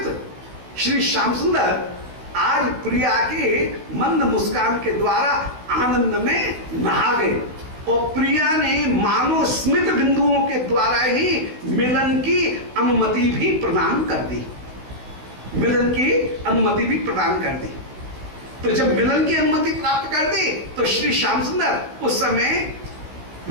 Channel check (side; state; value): left; late; 16 ms